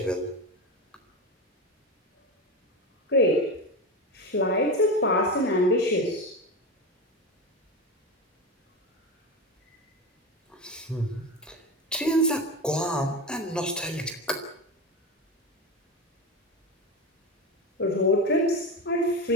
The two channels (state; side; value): normal; both; correlation 0.20